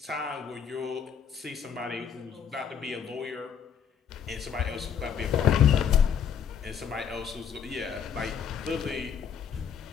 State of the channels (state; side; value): quieter; right; 7.7 dB